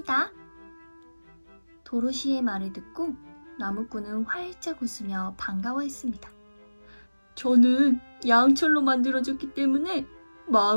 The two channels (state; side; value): inverted; both; correlation -1.00